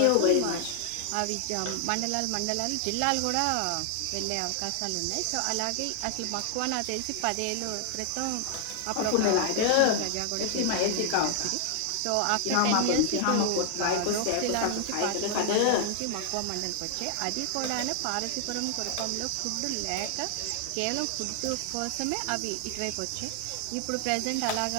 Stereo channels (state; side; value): different; both; correlation 0.00